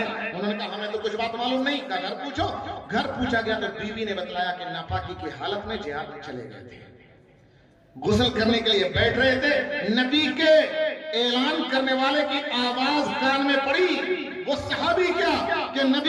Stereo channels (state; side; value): identical; both; correlation 1.00